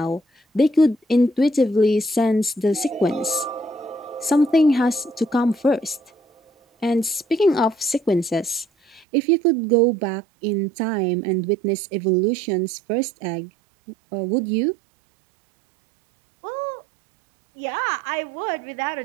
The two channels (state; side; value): drops out; left; at 9.1 s